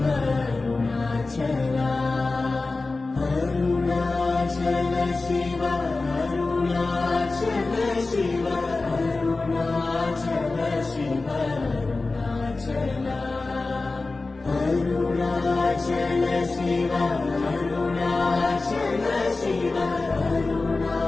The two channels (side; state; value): right; quieter; 3.5 dB